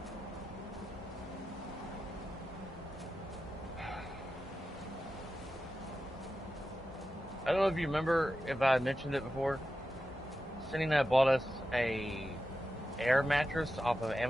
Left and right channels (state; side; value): normal; both; correlation 0.91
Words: I don't know if you remember if I mentioned it before. Cindy and I bought us a air mattress off of